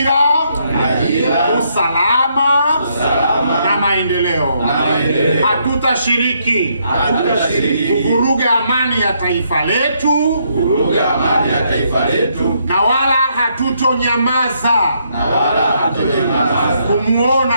usalama na maendeleo. Hatutashiriki kuvuruga amani ya taifa letu, na wala hatutonyamaza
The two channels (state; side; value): inverted; both; correlation -0.74